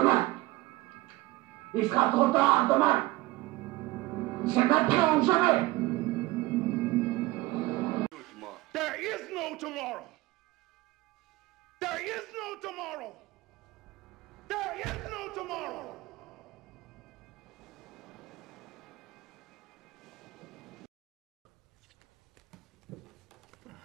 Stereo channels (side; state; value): left; quieter; 19.4 dB